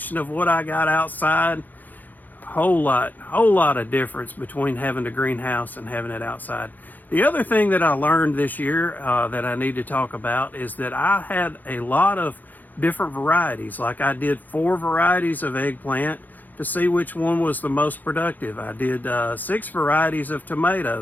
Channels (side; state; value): right; late; 0.084 ms